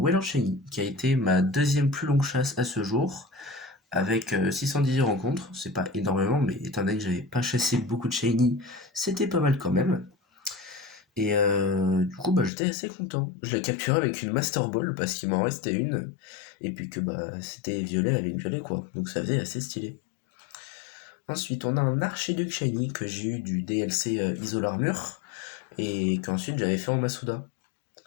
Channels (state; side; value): drops out; right; at 12.5 s